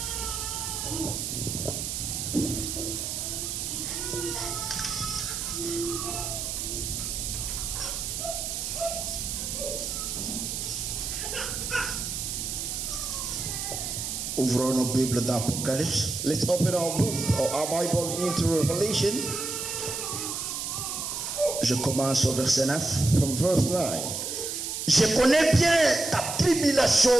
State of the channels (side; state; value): right; noise; hiss, 4 dB below the sound